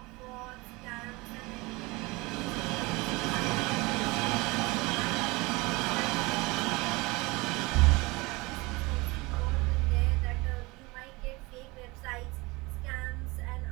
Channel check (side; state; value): left; quieter; 24.0 dB